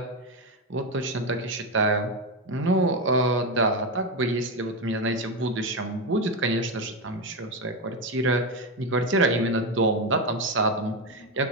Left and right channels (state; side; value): normal; both; correlation 0.12